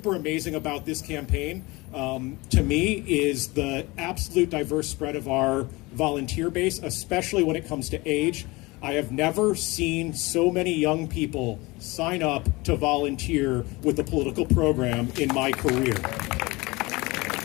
amazing about this campaign, to me, is the absolute diverse spread of our volunteer base, especially when it comes to age. I have never seen so many young people sign up to volunteer with the political program in my career.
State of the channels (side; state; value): right; quieter; 23.1 dB